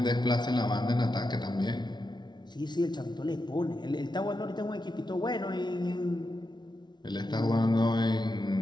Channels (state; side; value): late; right; 0.21 ms